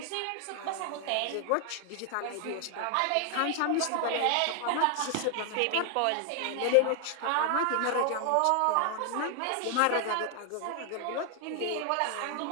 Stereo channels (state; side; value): different; both; correlation 0.00